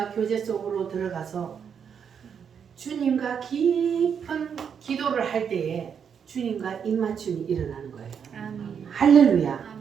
교제 속으로 들어가서 주님과 깊은 기도를 할 때에 주님과 입맞춤이 일어나는 거예요. 아멘. 할렐루야.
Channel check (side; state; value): left; quieter; 7.3 dB